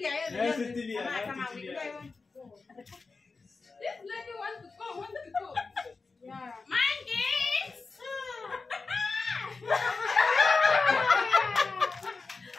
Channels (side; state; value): right; quieter; 4.2 dB